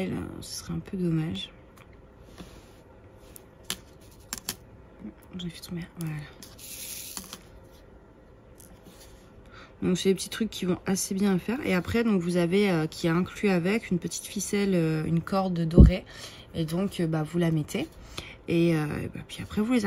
ce serait un peu dommage. J'ai fait tomber. Voilà. Donc c'est des petits trucs qui vont assez bien à faire. Et après, donc vous avez qui est inclus avec une petite ficelle, une corde dorée. Et donc vous la mettez. Et puis après vous les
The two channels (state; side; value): identical; both; correlation 1.00